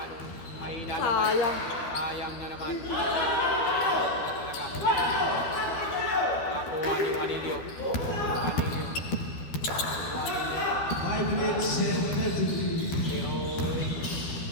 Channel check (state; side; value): late; right; 12 ms